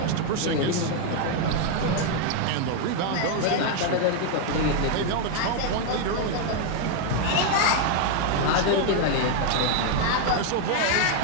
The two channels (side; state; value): both; different; correlation 0.00